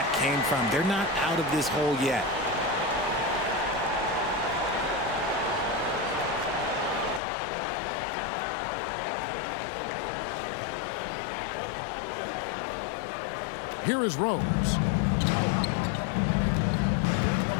came from. They're not out of this hole yet. Here is Rose.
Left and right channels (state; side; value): drops out; right; at 7.2 s